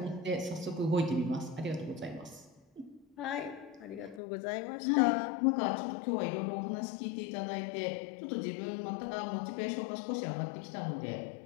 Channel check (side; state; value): right; drops out; at 4.2 s